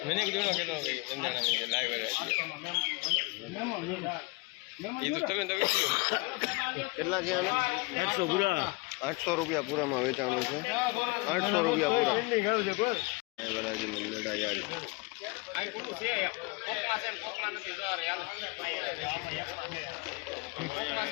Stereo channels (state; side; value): quieter; right; 26.7 dB